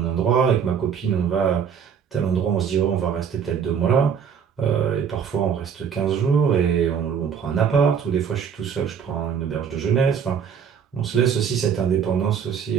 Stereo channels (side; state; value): left; quieter; 7.3 dB